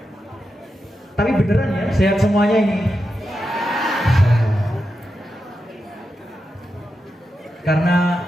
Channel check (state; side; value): normal; both; correlation 0.88